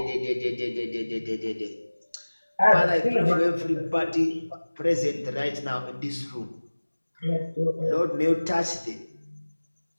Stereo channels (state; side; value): inverted; both; correlation -1.00